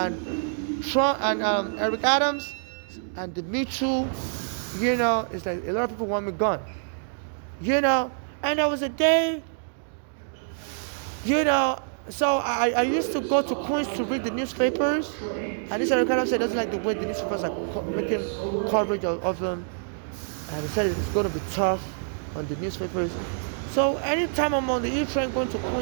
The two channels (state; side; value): silent; left; digital silence